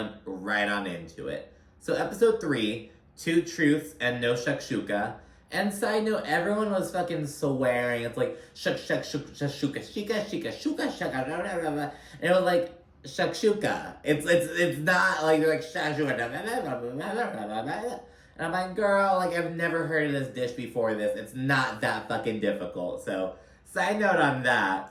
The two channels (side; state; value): both; identical; correlation 1.00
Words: right on into it. So Episode 3, Two Truths and No Shakshuka. And side note, everyone was fucking swearing. It's like, shuk, shuk, shuk, shakshuka, shika, shika, shuka, shaka, blah, blah, blah, blah. And it was like, shakshuka. It's not like they're like shakshuka. And I'm like, girl, like I've never heard of this dish before this. It's not that fucking difficult. So, side note on